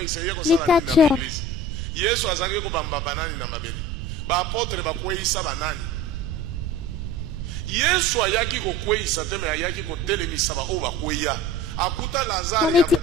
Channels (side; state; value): right; noise; rumble, 5 dB below the sound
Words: catcheurs. Apôtre bakweyisa banani Yesu ayaki kokweyisa te me ayaki kotelemisa ba o bakweya akuta Lazare ya